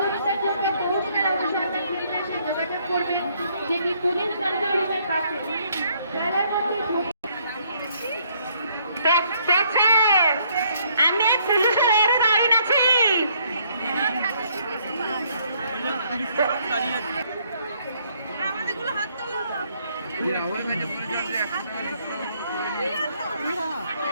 জন্য পৌঁছানোর অবসরকে পরিবেশে যোগাযোগ করবেন, যেটি পুলিশ কন্ট্রোল রুমের পাশে। আমি পুলিশের এর দাঁড়িয়ে আছি। আমাদেরগুলো হাত তোলো।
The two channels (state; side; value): inverted; both; correlation -0.67